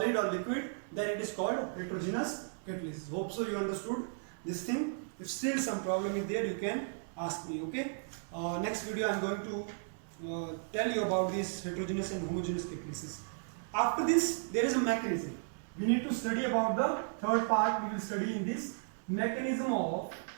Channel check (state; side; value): silent; left; digital silence